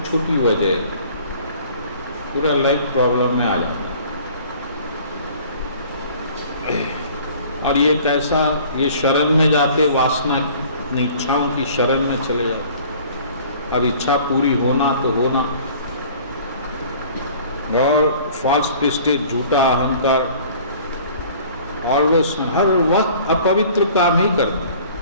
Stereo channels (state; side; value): inverted; both; correlation -0.50